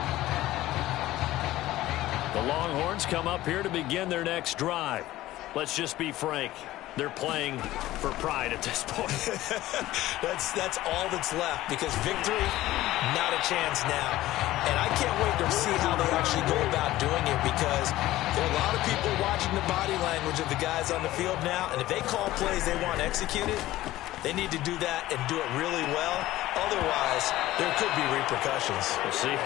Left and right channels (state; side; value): quieter; right; 15.9 dB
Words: The Longhorns come up here to begin their next drive. Let's just be frank. They're playing for pride at this point. That's all that's left, because victory, not a chance now. And I can't wait to see how they actually go about doing it, because there are a lot of people watching the body language of the guys on the field now, and if they call plays they want executed, they need to do that and do it really well. Otherwise, there could be repercussions. We'll see